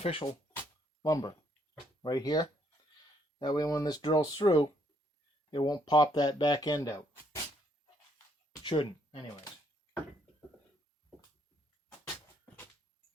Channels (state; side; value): normal; both; correlation 0.70